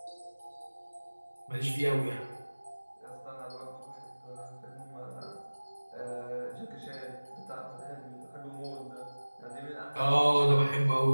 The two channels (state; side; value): inverted; both; correlation -1.00